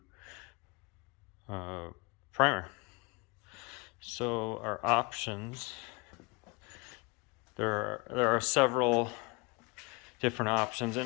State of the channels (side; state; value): right; quieter; 28.3 dB